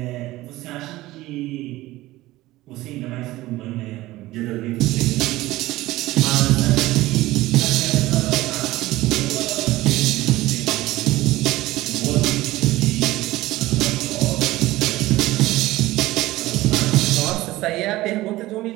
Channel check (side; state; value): left; quieter; 17.6 dB